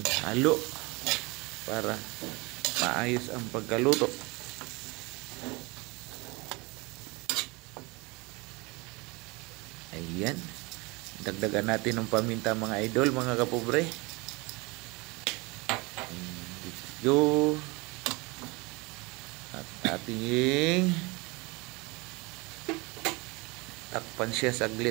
halo para maayos ang pagkaluto. Ayan, dagdagan natin ng paminta mga idol, mga kapobre. Let's go. At ating takpan siya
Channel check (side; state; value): left; quieter; 25.9 dB